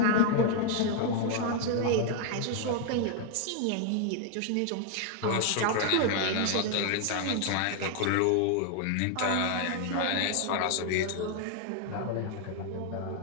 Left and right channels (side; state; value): both; different; correlation 0.00